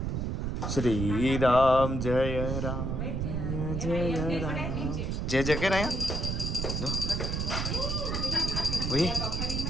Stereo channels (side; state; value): right; noise; rumble, 1 dB below the sound